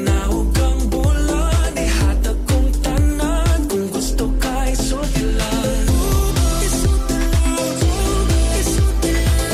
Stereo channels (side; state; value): both; identical; correlation 1.00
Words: ang bulan, ihatag kong tanan. Kung gusto ka isulti lang, isulti lang, isulti